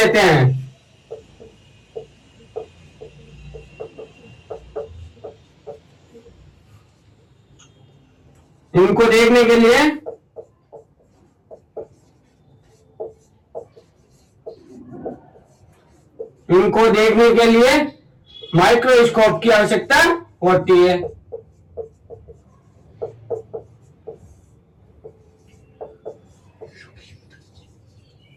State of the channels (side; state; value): both; identical; correlation 1.00